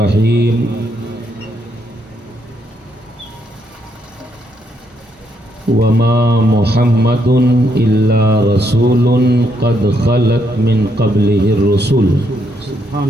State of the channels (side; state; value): both; normal; correlation 0.75